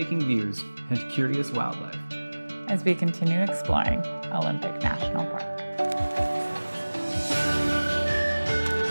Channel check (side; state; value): both; inverted; correlation -1.00